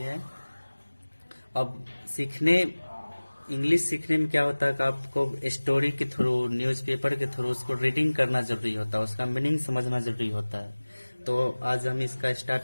अब इंग्लिश सीखने में क्या होता है कि आपको स्टोरी के थ्रू, न्यूज़पेपर के थ्रू उसको रीडिंग करना जरूरी होता है, उसका मीनिंग समझना जरूरी होता है। तो आज हम इसका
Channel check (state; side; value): inverted; both; correlation -1.00